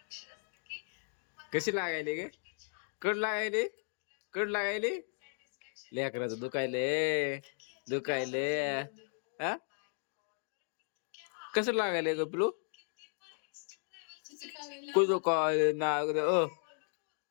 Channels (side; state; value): right; silent; 54 dB below the other